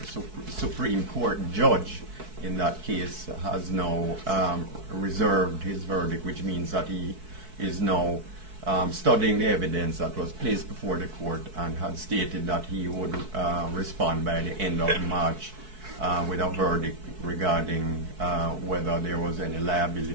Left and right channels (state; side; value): late; left; 4.6 ms